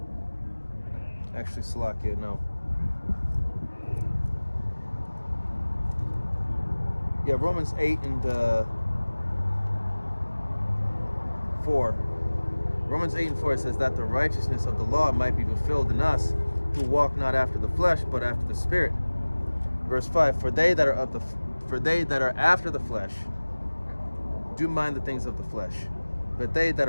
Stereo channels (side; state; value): both; inverted; correlation -1.00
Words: actually Salakia, no. Yeah, Romans 8 and 4. Romans 8 and 4 says that the righteousness of the law might be fulfilled in us who walk not after the flesh, but after the Spirit. Verse 5, for they that are after the flesh do mind the things of the flesh, but they that